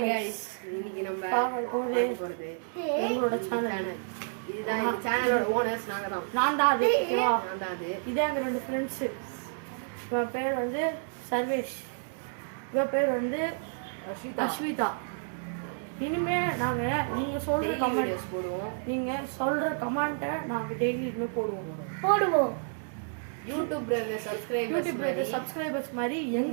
guys இன்னைக்கு நம்ம பார்க்க போறது எங்களோட சேனல். இதுதான் இந்த சேனலோட ஓனர்ஸ் நான் தான் அது. இதே எங்க ரெண்டு ஃப்ரெண்ட்ஸ். இவன் பேர் வந்து சர்வேஷ், இவன் பேர் வந்து அஸ்விதா. இனிமே நாங்க நீங்க சொல்ற கமெண்ட்ஸ் போடுவோம். நீங்க சொல்ற கமெண்ட்டை நாங்க டெய்லி போடுவோம். யூடியூப்ல சப்ஸ்கிரைபர்ஸ் மாதிரி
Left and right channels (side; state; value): left; silent; digital silence